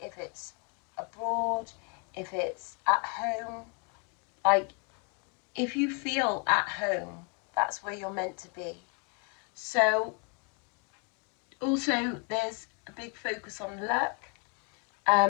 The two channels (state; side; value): quieter; right; 36.0 dB